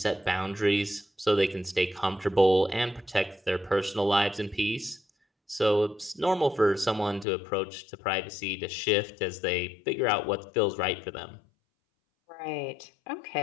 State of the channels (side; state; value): right; drops out; at 7.2 s